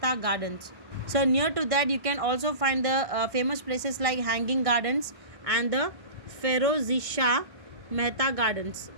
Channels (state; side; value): late; left; 1.6 ms